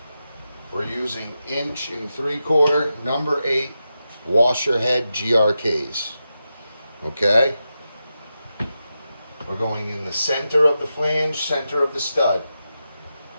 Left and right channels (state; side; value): inverted; both; correlation -0.89